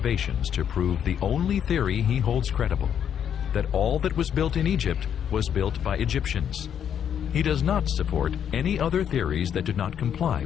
to prove the only theory he holds credible, that all that was built in Egypt was built by Egyptians. He does not support any other theories that do not comply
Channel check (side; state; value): right; quieter; 8.8 dB